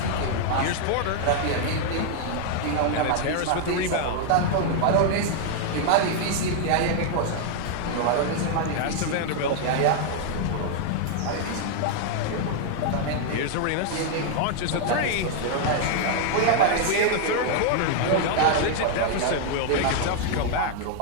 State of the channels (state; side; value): different; both; correlation 0.00